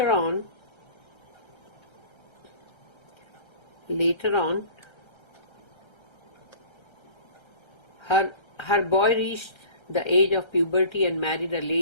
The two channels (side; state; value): right; late; 1.3 ms